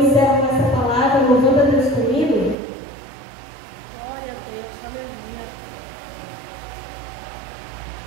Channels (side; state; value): left; drops out; at 2.6 s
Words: com essa palavra, louvando a Deus comigo.